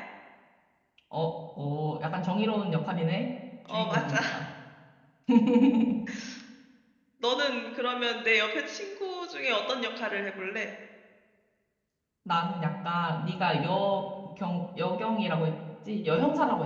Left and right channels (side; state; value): both; identical; correlation 1.00